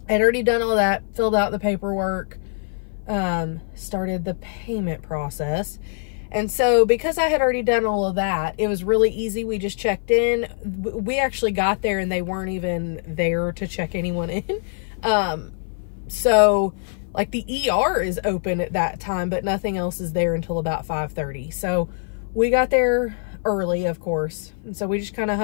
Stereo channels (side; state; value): right; silent; 56 dB below the other